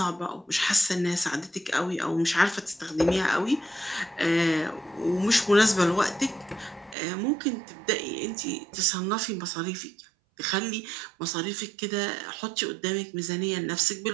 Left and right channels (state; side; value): drops out; left; at 7.0 s